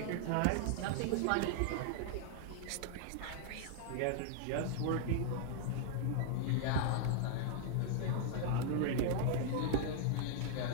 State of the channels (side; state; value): both; different; correlation -0.01